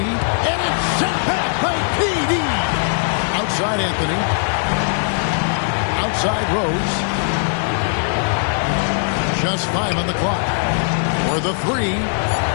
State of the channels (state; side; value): silent; right; digital silence